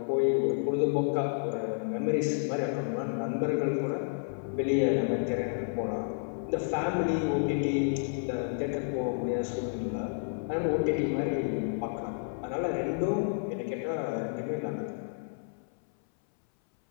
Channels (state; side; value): silent; right; 57 dB below the other